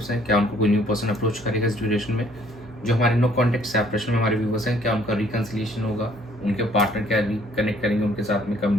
हैं, क्या उनको कोई न्यू पर्सन अप्रोच करेगा इस ड्यूरेशन में। जो हमारे नो कॉन्टेक्ट सेपरेशन में हमारे व्यूवर्स हैं, क्या उनका रिकन्सिलिएशन होगा, उनके पार्टनर क्या रिकनेक्ट करेंगे, उनके साथ में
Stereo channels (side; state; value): both; normal; correlation 0.61